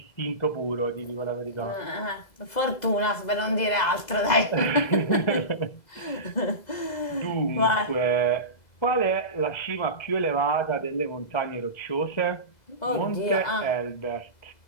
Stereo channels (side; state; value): right; late; 2.0 ms